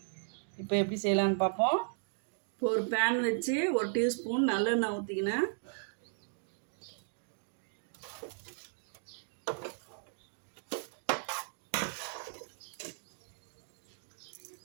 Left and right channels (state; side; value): silent; left; digital silence